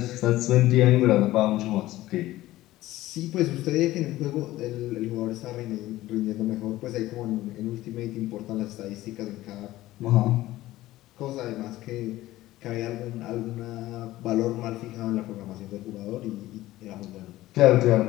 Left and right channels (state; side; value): quieter; right; 16.2 dB